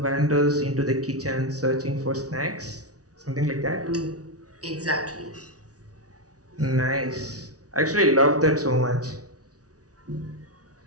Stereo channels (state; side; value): late; left; 0.67 ms